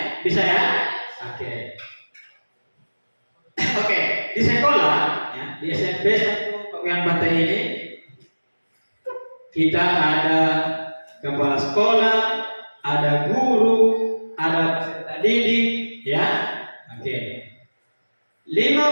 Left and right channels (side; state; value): both; inverted; correlation -1.00